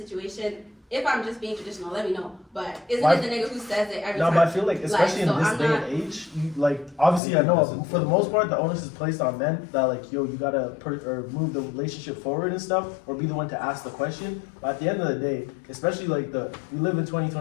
if I'm just being traditional, let me know. But isn't it the nigga who says it every time? No, but I feel like, especially in this day and age, you, like, obviously I know for the most part the onus is placed on men that like, yo, you gotta move the relationship forward and stuff, or be the one to ask the question. But at the end of the day, especially like we live in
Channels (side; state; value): right; drops out; at 7.2 s